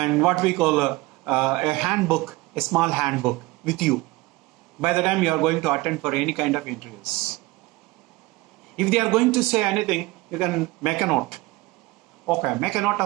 what we call a handbook, a small handbook with you by the time you are going to attend for any kind of interviews. If they are going to say anything, you can make a note. Okay, make a note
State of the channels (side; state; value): left; quieter; 21.1 dB